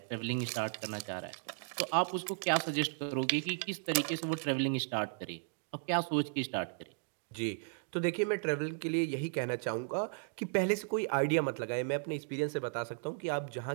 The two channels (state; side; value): silent; left; digital silence